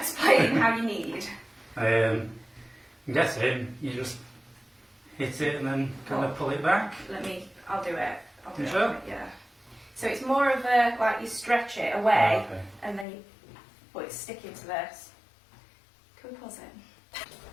how you knead. I'm guessing you just hit it and then kind of pull it back. I'll do it. You sure? Yeah. So it's more of a, like you stretch it away, okay. and then it's sticking to this. Can we pause it?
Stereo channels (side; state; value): right; drops out; at 13.1 s